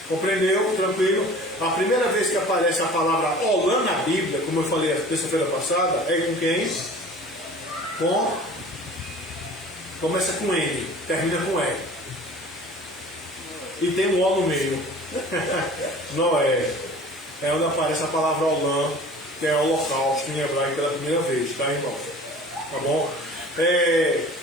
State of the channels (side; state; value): both; normal; correlation 0.44